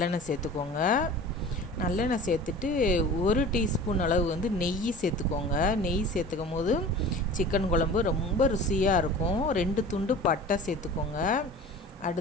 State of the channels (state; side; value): normal; both; correlation 0.39